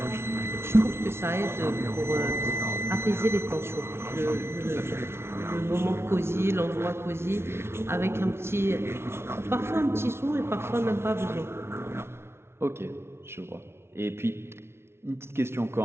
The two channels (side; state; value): left; late; 0.12 ms